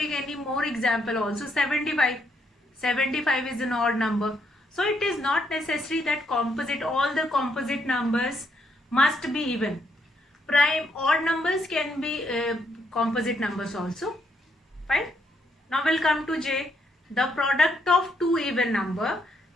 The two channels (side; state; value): both; normal; correlation 0.75